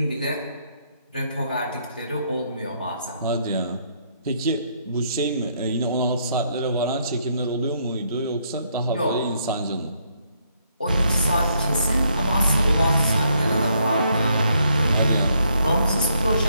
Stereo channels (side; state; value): both; inverted; correlation -0.73